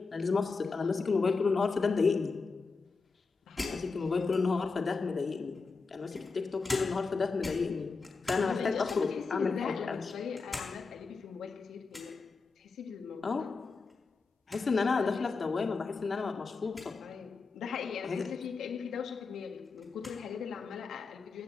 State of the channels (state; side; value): quieter; right; 4.4 dB